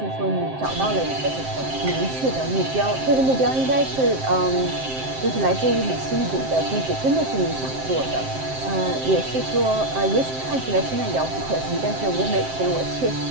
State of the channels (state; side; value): late; left; 7.6 ms